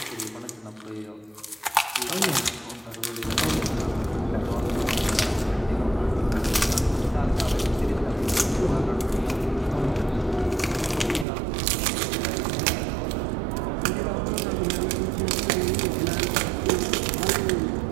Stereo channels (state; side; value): drops out; left; at 11.2 s